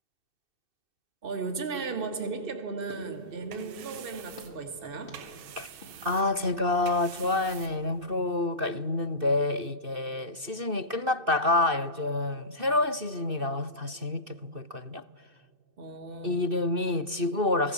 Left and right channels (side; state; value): left; late; 2.6 ms